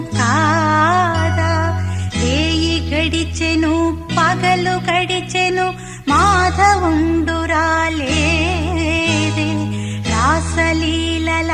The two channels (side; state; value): both; identical; correlation 1.00